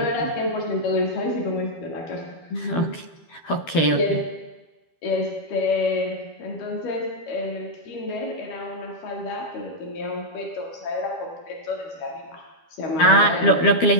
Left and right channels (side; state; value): right; late; 12 ms